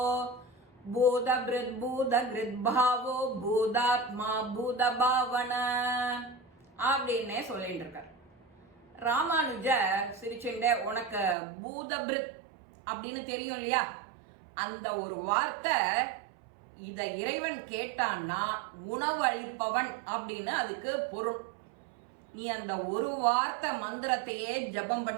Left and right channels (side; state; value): left; drops out; at 11.4 s